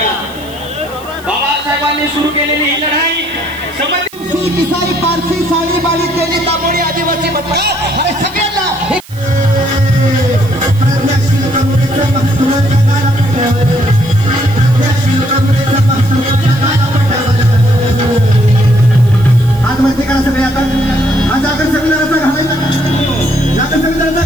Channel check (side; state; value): right; noise; hiss, 22 dB below the sound